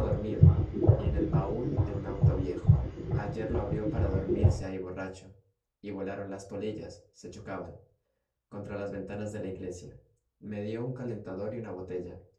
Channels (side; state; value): both; identical; correlation 1.00